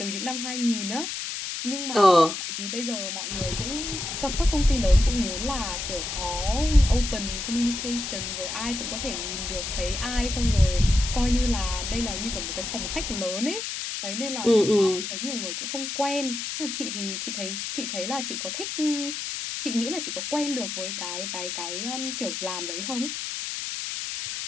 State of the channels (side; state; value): left; noise; hiss, 4 dB below the sound